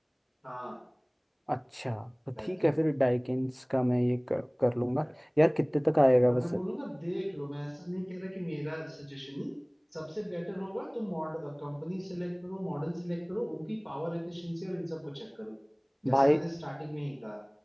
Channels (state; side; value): identical; both; correlation 1.00